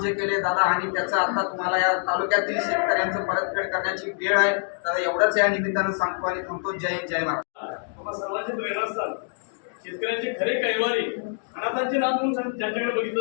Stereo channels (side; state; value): right; silent; digital silence